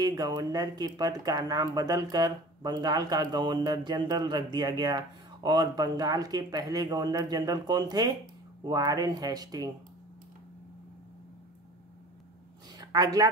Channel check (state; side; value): normal; both; correlation 0.42